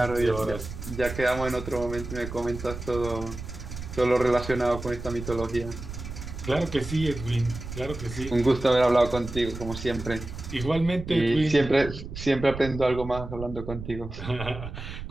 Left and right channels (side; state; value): right; noise; rumble, 9 dB below the sound